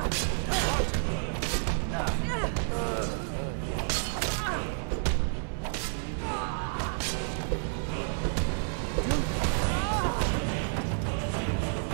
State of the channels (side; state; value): left; silent; 58 dB below the other